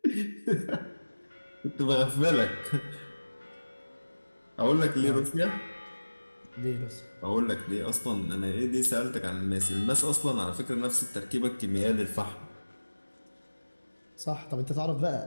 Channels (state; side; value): inverted; both; correlation -1.00